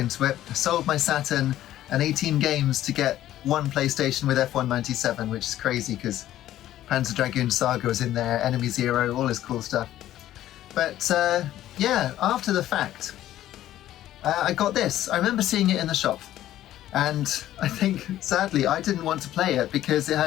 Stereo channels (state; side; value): quieter; right; 13.2 dB